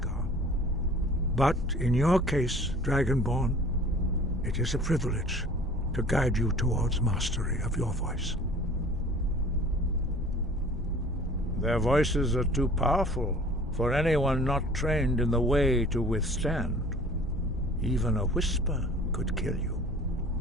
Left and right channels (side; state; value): both; normal; correlation 0.47